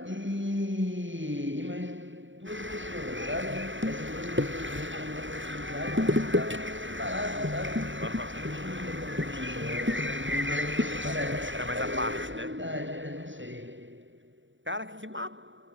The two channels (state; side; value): late; left; 0.55 ms